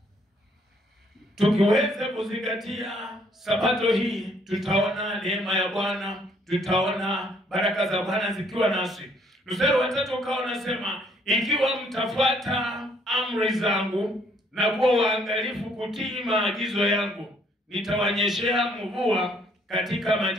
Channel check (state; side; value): normal; both; correlation 0.65